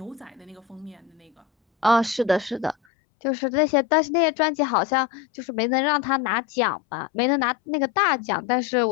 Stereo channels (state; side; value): drops out; right; at 2.8 s